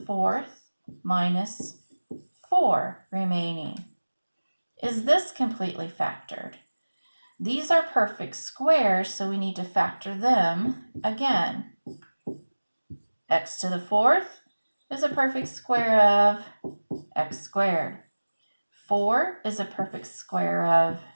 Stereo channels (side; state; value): both; inverted; correlation -1.00